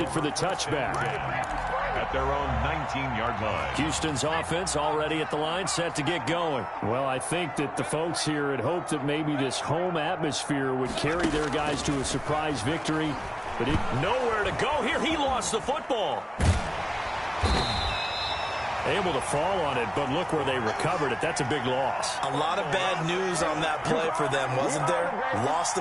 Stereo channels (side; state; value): both; identical; correlation 1.00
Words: for the touchback. At their own 19-yard line. Houston's offense already at the line, set to get going. Well, I think that the folks here had hoped that maybe this home atmosphere would carry their guys to a surprise victory. But nowhere to go here. He lost the football. Able to fall on it, but look where they recovered it. That's a big loss. A lot of bad news on that play for them, wasn't there? Lost